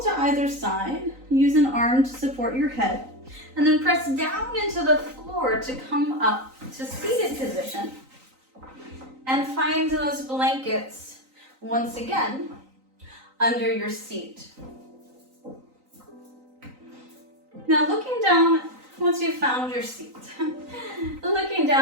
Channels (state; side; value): late; left; 3.9 ms